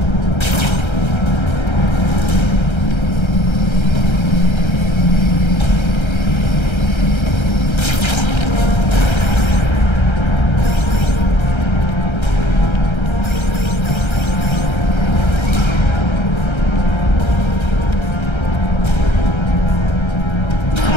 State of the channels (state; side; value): late; right; 1.3 ms